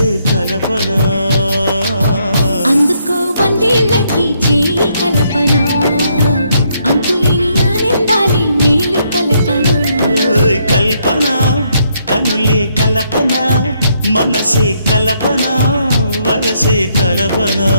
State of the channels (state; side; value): inverted; both; correlation -0.73